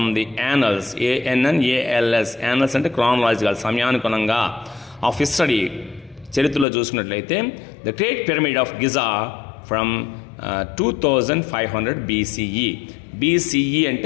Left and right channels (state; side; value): drops out; right; at 6.7 s